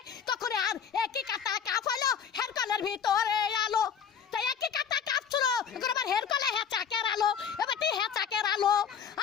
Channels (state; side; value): quieter; right; 7.5 dB